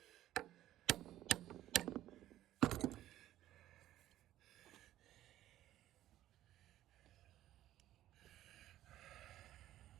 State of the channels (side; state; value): left; quieter; 13.5 dB